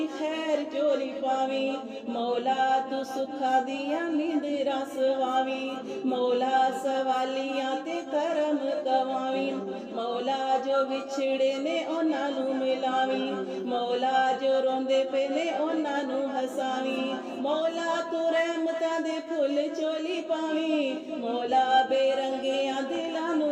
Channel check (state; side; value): identical; both; correlation 1.00